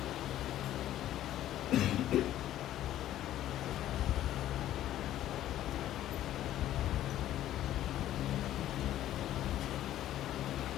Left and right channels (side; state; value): right; quieter; 12.8 dB